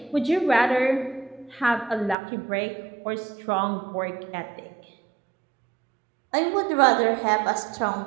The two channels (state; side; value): drops out; left; at 2.1 s